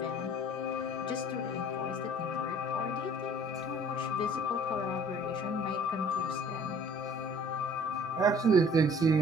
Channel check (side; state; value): both; normal; correlation 0.53